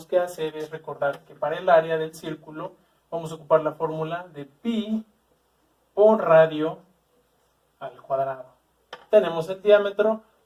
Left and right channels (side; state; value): both; identical; correlation 1.00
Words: que hacer es recordar que para el área del círculo vamos a ocupar la fórmula de pi por radio al cuadrado. Tenemos el diámetro,